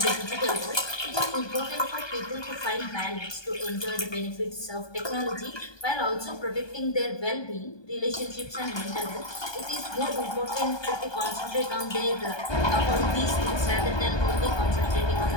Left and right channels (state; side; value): late; right; 1.2 ms